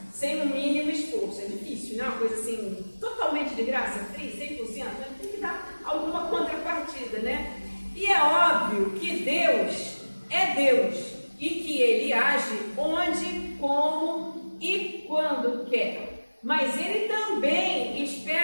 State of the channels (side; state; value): both; inverted; correlation -1.00